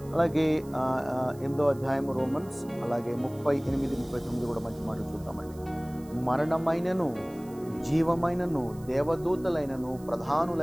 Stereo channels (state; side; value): noise; right; hiss, 24 dB below the sound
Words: అలాగే 8వ అధ్యాయం రోమన్స్, అలాగే 38-39 కూడా మంచి మాటలు చూద్దామండి. మరణమైనను జీవమైనను దేవదూతలైనను